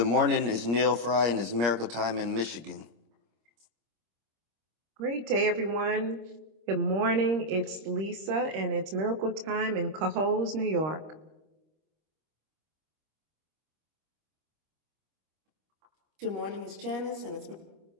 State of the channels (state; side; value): late; left; 25 ms